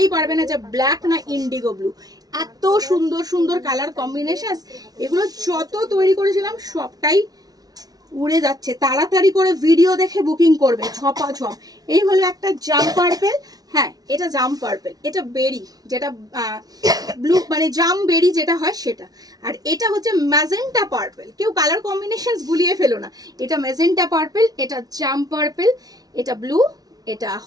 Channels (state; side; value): late; left; 0.19 ms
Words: পারবে না যে ব্ল্যাক না ইন্ডিগো ব্লু। এত সুন্দর সুন্দর কালার কম্বিনেশন, এগুলো যত তৈরি করেছিলাম সবটাই উড়ে যাচ্ছে, তাড়াতাড়ি করে ভিডিও দেখে বুকিং করবে ঝপাঝপ। এই হলো একটা জাম পার্পেল, হ্যাঁ এটা জাম পার্পেল, এটা বেরি, যেটা ব্লু মানে জাম বেরি যেটা হয় সেটা, আর এটা হচ্ছে ম্যাজেন্টা পার্পেল। কেউ কালার কম্বিনেশনস গুলিয়ে ফেলো না, এটা ম্যাজেন্টা পার্পেল, এটা জাম পার্পেল, এটা ব্লু, এটা